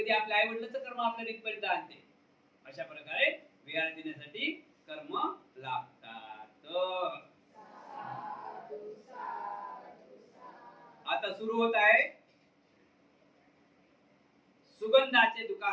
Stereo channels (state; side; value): identical; both; correlation 1.00